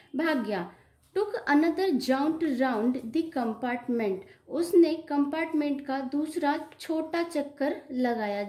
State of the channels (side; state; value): both; identical; correlation 1.00